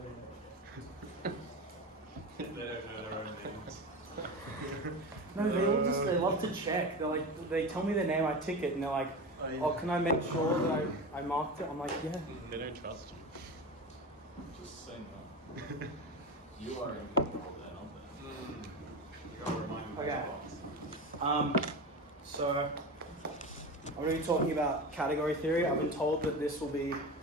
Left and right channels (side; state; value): both; normal; correlation 0.26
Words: it. They don't know their own names. No, they love to check. They tell me their name, I tick it, and they're like, oh, can I make sure that I marked it? I'm like, yeah. They don't trust you. Just say no. You are in control then, aren't you gotta remind me. Okay. So I'm going to be talking about category theory. I've been told that this will be